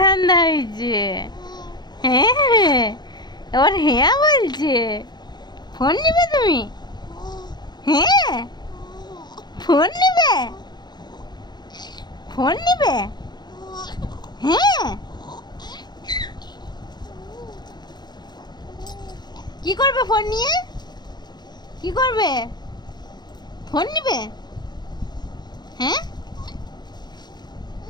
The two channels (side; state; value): right; late; 0.21 ms